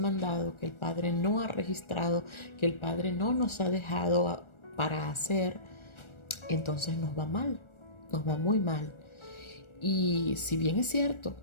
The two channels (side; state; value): right; late; 1.4 ms